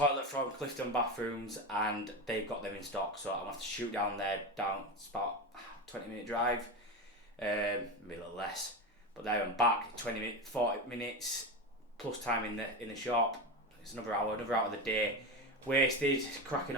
from Clifton Bathrooms and they've got them in stock, so I'm gonna have to shoot down there. It's about 20-minute drive, maybe a little less. But there I'm back, 40 minutes plus time in the shop. It's another hour of the day wasted. Cracking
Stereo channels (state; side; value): normal; both; correlation 0.19